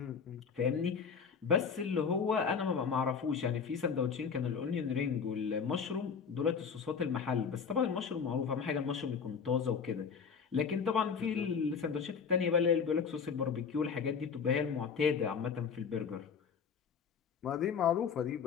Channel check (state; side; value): quieter; right; 6.2 dB